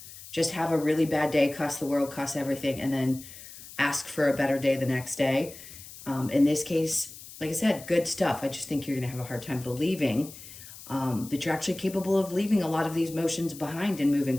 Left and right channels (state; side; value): noise; left; hiss, 16 dB below the sound